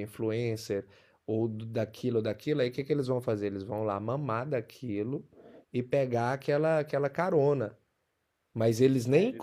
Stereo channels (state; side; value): identical; both; correlation 1.00